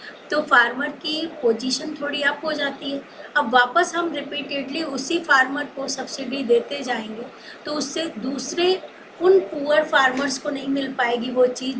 तो फार्मर की पोजीशन थोड़ी अप हो जाती है. अब वापस हम रिपीटेडली उसी फार्मर को सब्सिडी देते जाएंगे तो उससे दूसरे उन पुअर फार्मर्स को नहीं मिल पाएगी वो चीज़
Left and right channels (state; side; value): identical; both; correlation 1.00